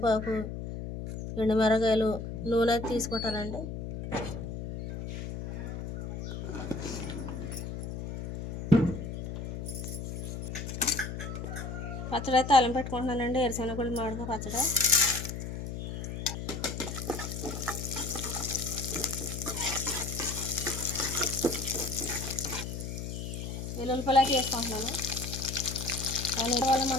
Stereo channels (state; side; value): noise; left; hum, 6 dB below the sound